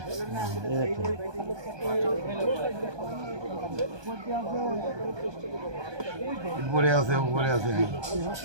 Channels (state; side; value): late; left; 1.2 ms